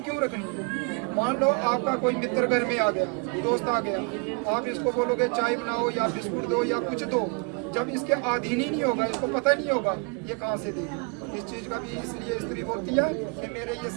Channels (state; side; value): quieter; left; 33.5 dB